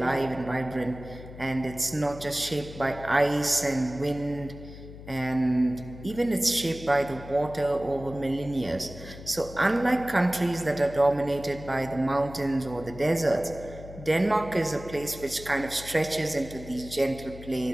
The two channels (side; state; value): left; noise; hum, 14 dB below the sound